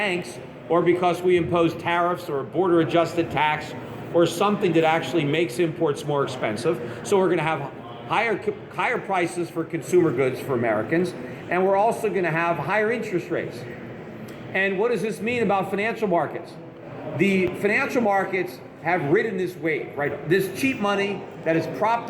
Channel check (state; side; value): identical; both; correlation 1.00